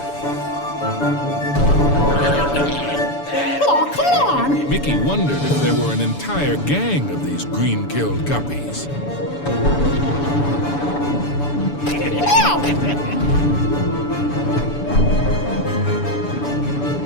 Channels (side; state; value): right; late; 7.0 ms